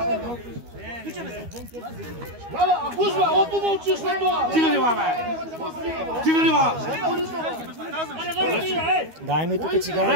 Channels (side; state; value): left; late; 12 ms